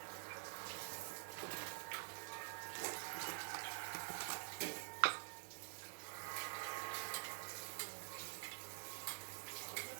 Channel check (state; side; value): silent; left; digital silence